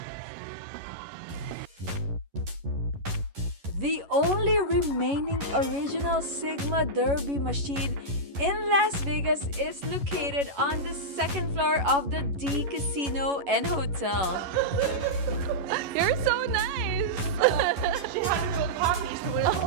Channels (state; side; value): late; left; 11 ms